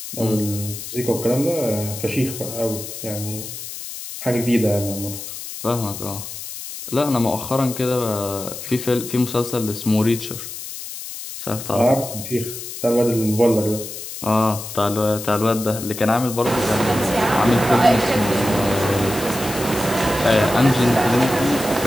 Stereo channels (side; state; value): left; noise; hiss, 10 dB below the sound